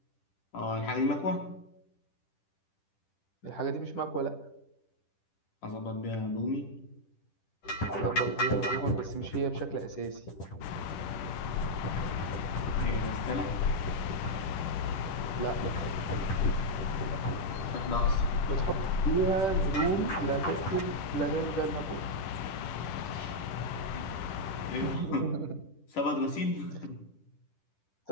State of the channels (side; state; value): right; late; 10 ms